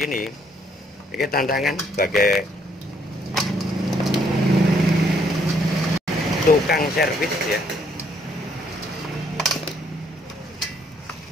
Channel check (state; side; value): normal; both; correlation 0.68